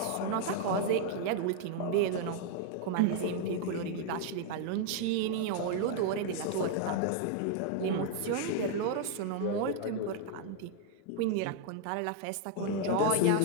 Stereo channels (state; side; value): different; both; correlation 0.00